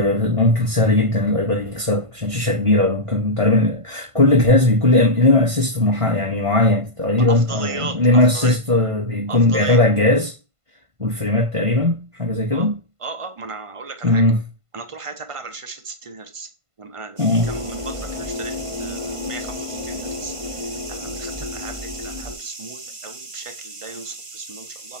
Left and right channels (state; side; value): late; left; 1.5 ms